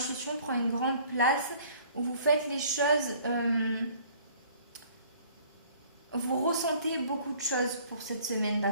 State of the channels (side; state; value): both; inverted; correlation -0.55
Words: prend une grande place, où vous faites les choses, vous ressentez beaucoup de choses pour cette semaine,